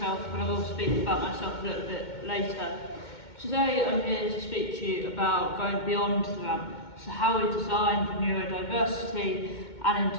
but I will speak about myself a little bit later. Today I'm here to speak to you about going beyond the ramp, so how we design for neurodiversity and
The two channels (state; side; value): late; right; 2.2 ms